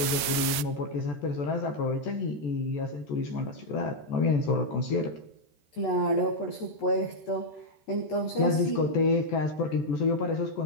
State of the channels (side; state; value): right; late; 13 ms